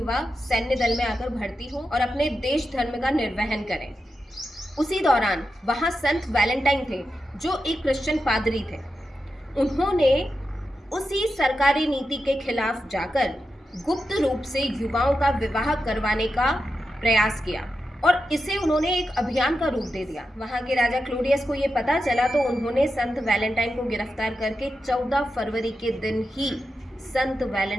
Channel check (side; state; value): both; normal; correlation 0.89